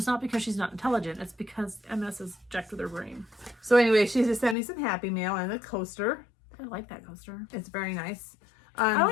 not because she's not intelligent. It's because MS is jacked with her brain. So anyway, she just sent me some Happy Mail and a coaster. I like that coaster. It's very nice. I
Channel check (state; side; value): drops out; right; at 4.5 s